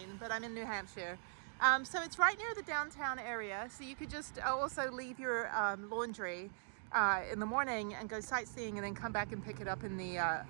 but I'm in New Hampshire. So it's right near the downtown area. So you could just also leave your laundry in the morning and go sightseeing and then come back and pick it up in the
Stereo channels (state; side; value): silent; left; digital silence